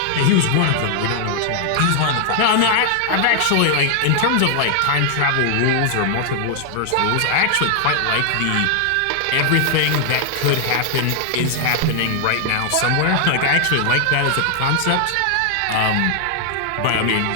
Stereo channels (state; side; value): different; both; correlation 0.00